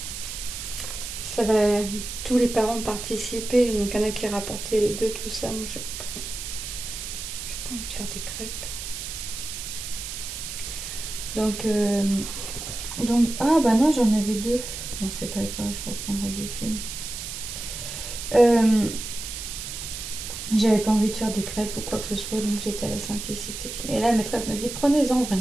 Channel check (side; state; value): right; noise; hiss, 7 dB below the sound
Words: ça va, tous les parents participer, donc il y en a qui rapportaient les deux, tout ça. Moi, j'ai pas envie de faire des crêpes. Donc ah bah non, j'en avais deux. Non, c'est pas grave, je reprendrai du film. J'avais pas envie de faire des crêpes ou quoi que ce soit, donc j'étais à la simplicité. Et là, la maîtresse m'a dit, prenez-en